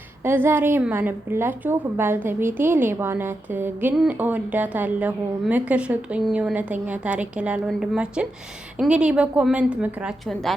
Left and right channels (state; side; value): normal; both; correlation 0.87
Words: ዛሬ የማነብላችሁ ባልተቤቴ ሌባ ናት ግን እወዳታለሁ፣ ምክር ስጡኝ፣ እውነተኛ ታሪክ ይላል ወንድማችን። እንግዲህ በኮመንት ምክራችሁን